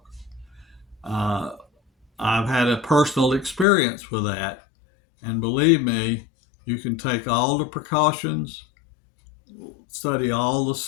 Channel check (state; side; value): drops out; right; at 3.7 s